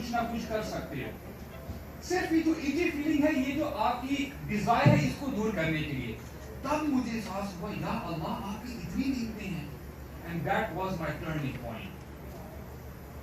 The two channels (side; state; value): both; identical; correlation 1.00